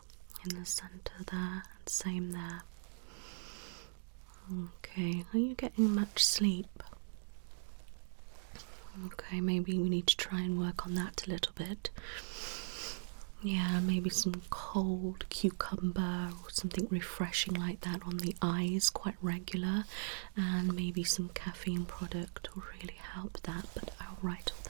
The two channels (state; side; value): silent; left; digital silence